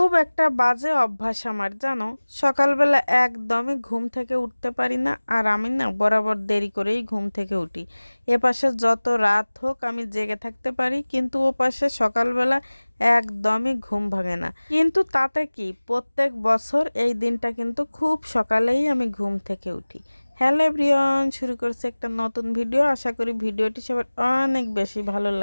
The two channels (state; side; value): inverted; both; correlation -1.00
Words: একটা বাজে অভ্যাস আমার জানো। সকালবেলা একদমই ঘুম থেকে উঠতে পারি না, আর আমি না বরাবর দেরি করেই ঘুম থেকে উঠি। এপাশে যত রাত হোক আমি জেগে থাকতে পারি, কিন্তু ও পাশে সকালবেলা একদমই ঘুম ভাঙে না। কিন্তু তাতে কি, প্রত্যেক বছর এই দিনটা কিন্তু খুব সকালেই আমি ঘুম থেকে উঠি। হ্যালো এভরিওয়ান, শুরু করছে একটা নতুন ভিডিও। আশা করি ভিডিওটি সবার অনেক বেশি ভালো